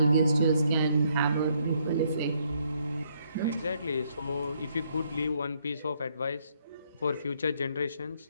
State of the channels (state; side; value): inverted; both; correlation -0.71